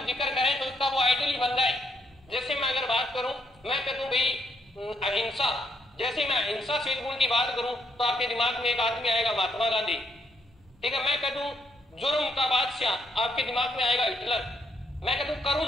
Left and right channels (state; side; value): normal; both; correlation 0.75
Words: जिक्र करें तो उसका वो आइडल ही बन जाए। जैसे मैं अगर बात करूं, मैं कह दूं भाई अहिंसा, जैसे मैं अहिंसा शील गुण की बात करूं तो आपके दिमाग में एक आदमी आएगा महात्मा गांधी, ठीक है। मैं कह दूं जुर्म का बादशाह, आपके दिमाग में आएगा हिटलर। मैं कह दूं